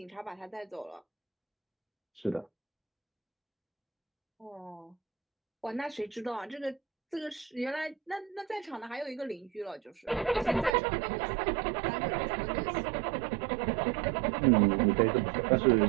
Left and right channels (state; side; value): drops out; left; at 10.7 s